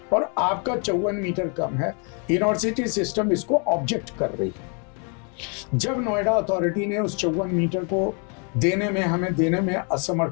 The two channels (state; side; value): quieter; right; 38.5 dB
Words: और आपका 54 मीटर कम है। यूनिवर्सिटी सिस्टम इसको ऑब्जेक्ट कर रही है। जब नोएडा अथॉरिटी ने उस 54 मीटर को हमें देने में